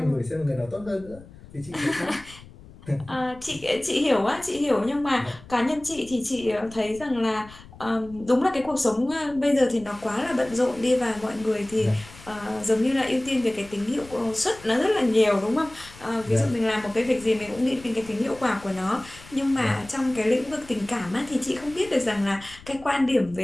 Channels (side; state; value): left; noise; rumble, 20 dB below the sound